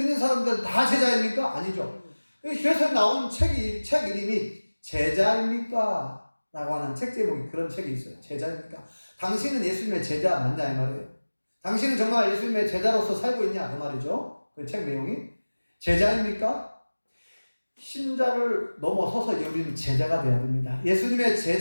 사람들은 다 제자입니까? 아니죠. 그래서 나온 책 이름이 제자입니까? 라고 하는 책 제목이, 그런 책이 있어요. 제자입니까? 당신은 예수님의 제자 맞냐 이 말이에요. 당신은 정말 예수님의 제자로서 살고 있냐 그 말이죠. 그 책 내용이. 제자입니까? 신자를 넘어서서 우리는 제자가 되어야 됩니다. 예수님의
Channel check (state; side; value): inverted; both; correlation -1.00